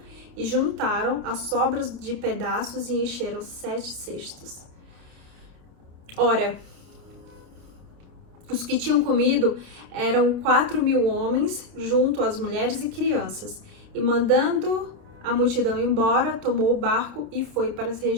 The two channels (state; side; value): late; left; 28 ms